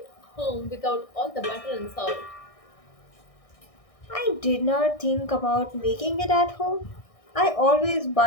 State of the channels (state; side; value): late; right; 1.6 ms